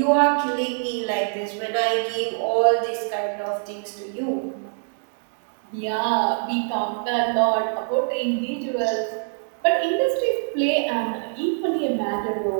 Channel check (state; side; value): silent; left; digital silence